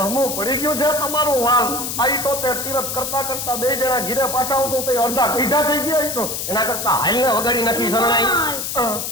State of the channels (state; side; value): noise; left; hiss, 4 dB below the sound